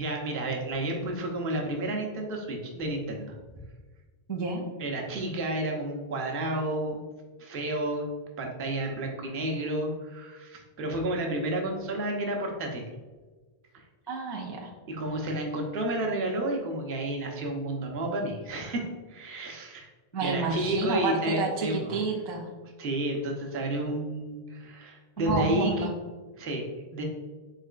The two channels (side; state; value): right; late; 1.1 ms